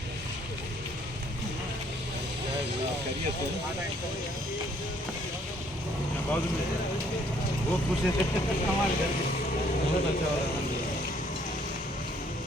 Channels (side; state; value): both; normal; correlation 0.64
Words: वो खुश है